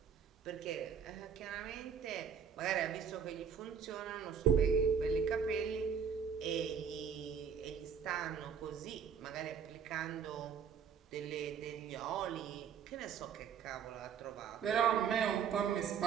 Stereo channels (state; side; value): quieter; left; 7.2 dB